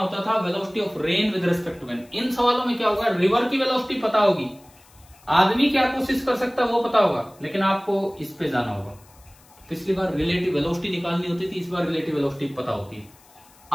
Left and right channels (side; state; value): left; noise; hiss, 28 dB below the sound